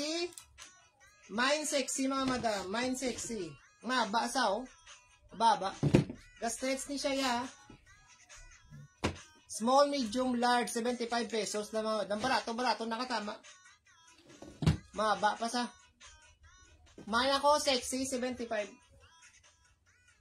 Mine sexy, mga madam. Mine sexy. Maba sa, oh. Baba. Stretch ni siya, ya. Small, medium, large, 75 pesos na mga madam. Barato, nakatama. Maba pa sa. Mine ako, sexy, 75.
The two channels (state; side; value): identical; both; correlation 1.00